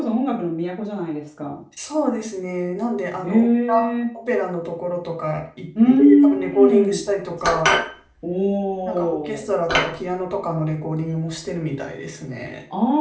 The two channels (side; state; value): both; identical; correlation 1.00